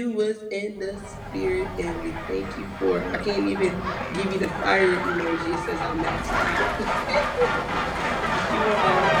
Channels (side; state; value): both; identical; correlation 1.00